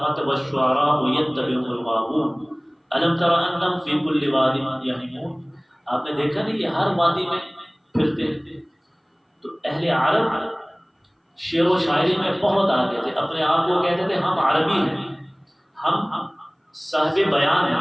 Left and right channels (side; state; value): both; identical; correlation 1.00